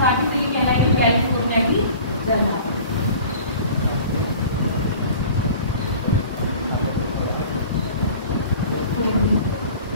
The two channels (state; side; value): inverted; both; correlation -0.44